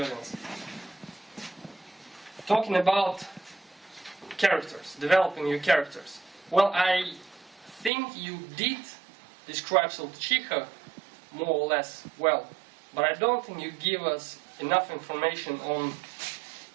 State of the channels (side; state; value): left; drops out; at 7.9 s